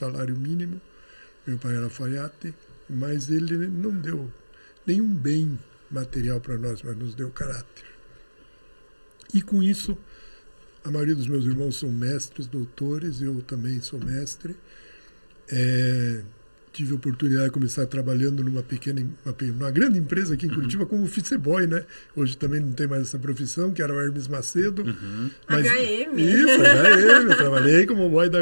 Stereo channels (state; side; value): inverted; both; correlation -1.00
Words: mínimo. Meu pai era alfaiate, mas ele não deu nenhum bem material para nós, mas nos deu caráter. E com isso, a maioria dos meus irmãos são mestres, doutores, eu também sou mestre. Tive a oportunidade de começar trabalhando numa grande empresa aqui em Curitiba como office boy, né? Hoje também não tem mais essa profissão, que era o Hermes Macedo. Mas, HM. Isso, HM, eu trabalhei como boy da